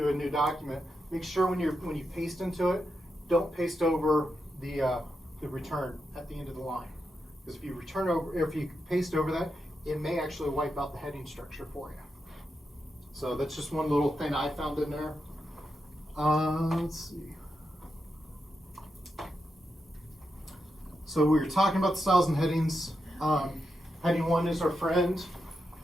a new document, make sure when you paste into it, don't paste over the return at the end of the line. Because if you paste over that, it may actually wipe out the heading structure for you. So that's just one little thing I found in there. Let's see. So we were talking about the styles and headings. Heading 1 is our friend.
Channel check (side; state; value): both; normal; correlation 0.86